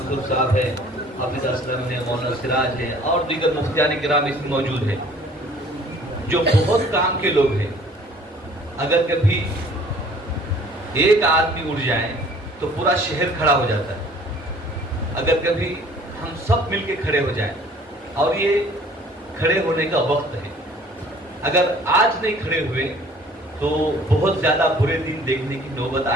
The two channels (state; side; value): normal; both; correlation 0.53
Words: صاحب ہے, حافظ اسلم ہے, مولانا سراج ہے, اور دیگر مفتیان کرام اس میں موجود ہیں جو بہت کام کے لوگ ہیں. اگر کبھی ایک آدمی اٹھ جائے تو پورا شہر کھڑا ہو جاتا ہے. اگر کبھی ہم سب مل کے کھڑے ہو جائیں, اور یہ کھڑے ہونے کا وقت ہے, اگر آج نہیں کھڑے ہوئے تو بہت زیادہ برے دن دیکھنے کی نوبت